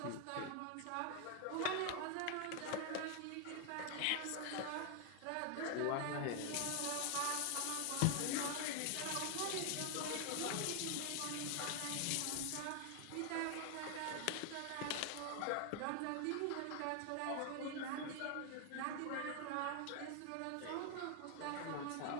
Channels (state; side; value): different; both; correlation 0.00